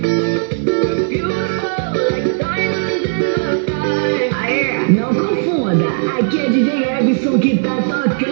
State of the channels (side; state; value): left; silent; 69 dB below the other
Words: Não confunda, aqui é DJ Ebson que tá